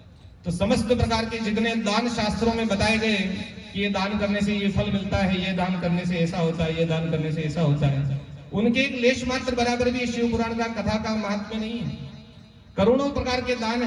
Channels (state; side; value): identical; both; correlation 1.00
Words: तो समस्त प्रकार के जितने दान शास्त्रों में बताए गए कि ये दान करने से ये फल मिलता है, ये दान करने से ऐसा होता है, ये दान करने से ऐसा होता है, उनके एक लेश मात्र बराबर भी शिव पुराण का कथा का महात्म्य नहीं है। करोड़ों प्रकार के दान